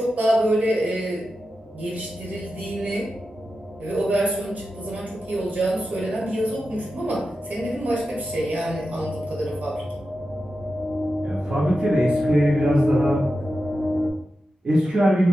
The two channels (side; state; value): both; normal; correlation 0.91